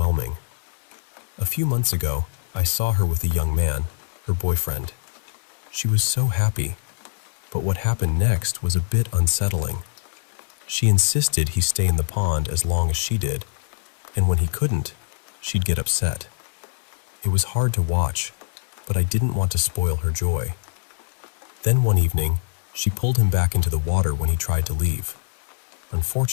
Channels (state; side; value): silent; right; digital silence